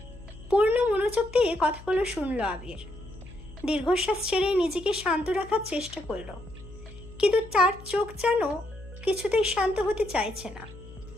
পূর্ণ মনোযোগ দিয়ে কথাগুলো শুনলো আবির। দীর্ঘশ্বাস ছেড়ে নিজেকে শান্ত রাখার চেষ্টা করলো, কিন্তু তার চোখ যেন কিছুতেই শান্ত হতে চাইছে না।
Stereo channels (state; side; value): noise; left; hum, 17 dB below the sound